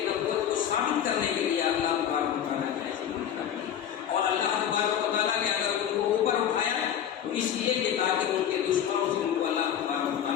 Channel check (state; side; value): quieter; right; 9.5 dB